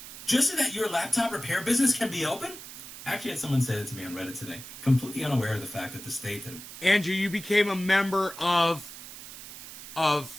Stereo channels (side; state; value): right; noise; hiss, 13 dB below the sound